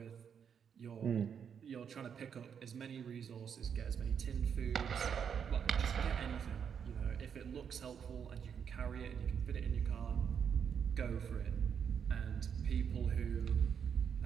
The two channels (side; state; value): left; quieter; 7.5 dB